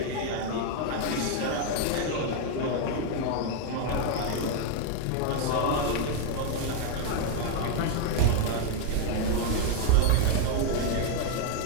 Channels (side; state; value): both; different; correlation 0.00